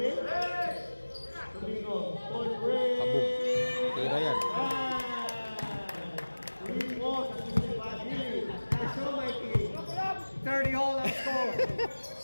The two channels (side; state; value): both; inverted; correlation -1.00